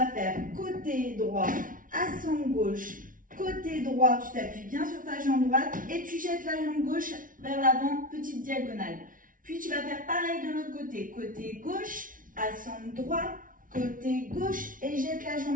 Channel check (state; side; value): late; left; 0.39 ms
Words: faire côté droit, assemble gauche. Côté droit, tu t'appuies bien sur ta jambe droite et tu jettes la jambe gauche vers l'avant, petite diagonale. Puis tu vas faire pareil de l'autre côté. Côté gauche, assemble droit, côté gauche et jette la